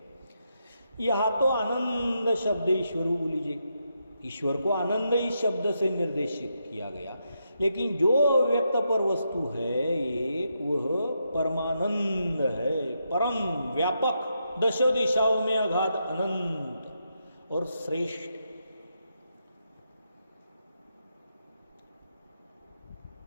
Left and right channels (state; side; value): inverted; both; correlation -0.82